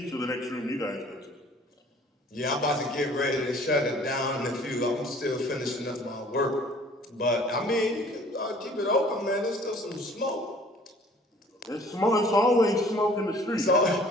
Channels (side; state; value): both; normal; correlation 0.53